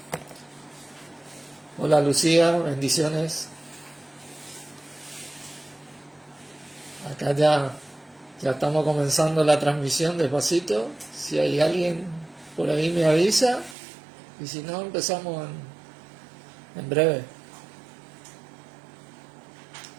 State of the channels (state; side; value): drops out; left; at 13.8 s